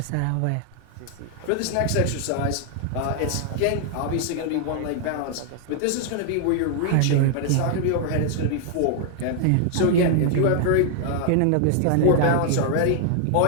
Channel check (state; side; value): different; both; correlation 0.00